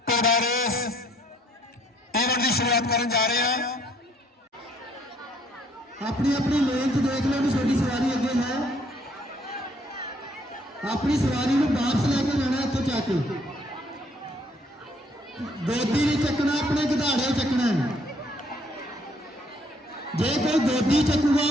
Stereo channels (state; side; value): normal; both; correlation 0.65